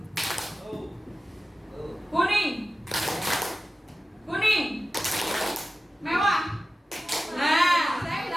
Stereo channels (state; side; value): normal; both; correlation 0.95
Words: kuning, mewah. Nah, saya